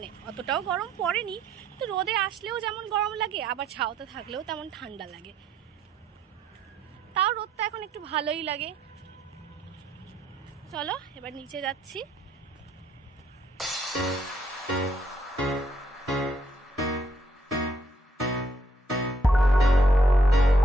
অতটাও গরম পড়েনি, তো রোদে আসলেও যেমন গরম লাগে, আবার ছাওতে থাকলেও তেমন ঠান্ডা লাগে। তাও রোদটা এখন একটু ভালোই লাগে। চলো এবার নিচে যাচ্ছি।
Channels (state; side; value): normal; both; correlation 0.70